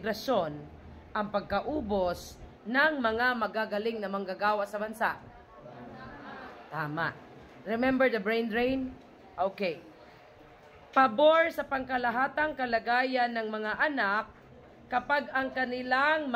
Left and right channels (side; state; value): both; identical; correlation 1.00